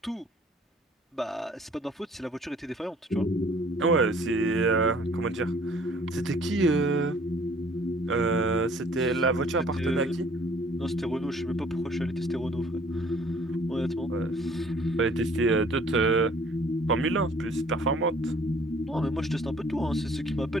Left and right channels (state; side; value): normal; both; correlation 0.56